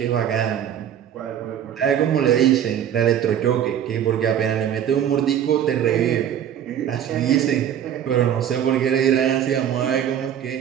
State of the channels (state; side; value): quieter; left; 9.7 dB